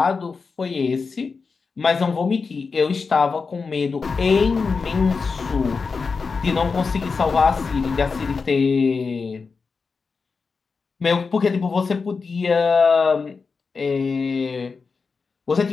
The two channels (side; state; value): right; quieter; 4.8 dB